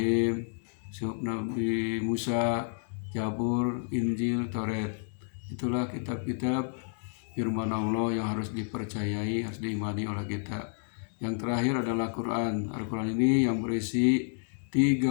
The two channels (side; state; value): right; silent; digital silence